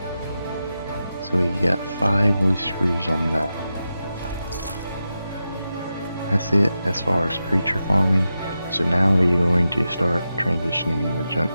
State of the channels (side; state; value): both; inverted; correlation -0.90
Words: so we got 5 loose screws on that. That's it as far as creature farming. So now we're going to start transitioning into junk